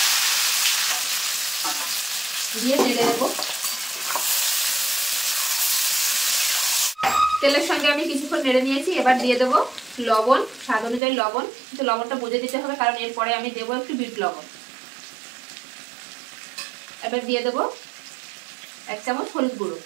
দিয়ে নেড়ে দেবো। তেলের সঙ্গে আমি কিছুক্ষণ নেড়ে নিয়েছি। এবার দিয়ে দেবো লবণ, স্বাদ অনুযায়ী লবণ, কিন্তু লবণটা বুঝে দিতে হবে, কারণ এরপরে আমি দেবো একটু বিট লবণ। এবার দিয়ে দেবো 1 চামচ হলুদ গুঁড়ো,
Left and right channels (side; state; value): left; drops out; at 11.0 s